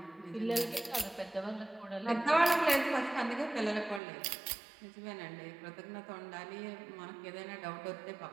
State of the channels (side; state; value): left; drops out; at 4.0 s